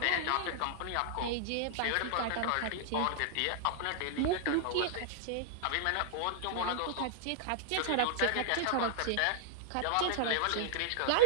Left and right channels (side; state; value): both; different; correlation -0.01